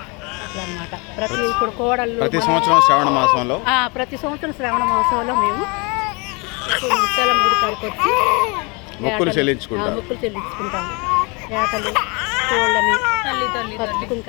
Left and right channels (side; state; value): right; quieter; 30.0 dB